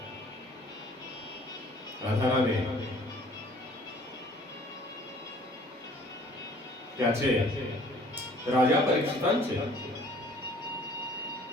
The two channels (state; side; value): normal; both; correlation 0.54